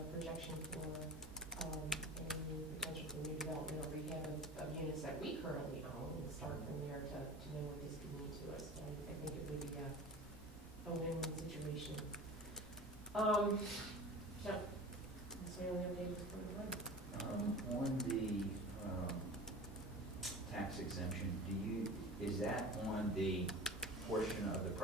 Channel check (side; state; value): both; normal; correlation 0.35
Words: projection for any potential for new development or rehab of units that we currently own and start from there to know what this could mean to us. I think it would be a win-win situation. So that's my only update for the one. On the tax exemption, is that on the portion of the